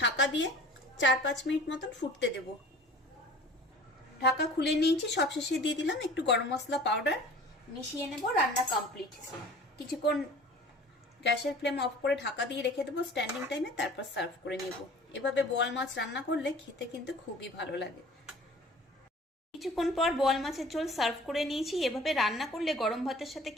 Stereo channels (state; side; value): normal; both; correlation 0.45